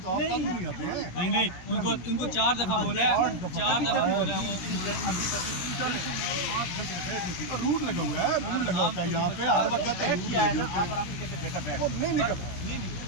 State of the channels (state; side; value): late; right; 16 ms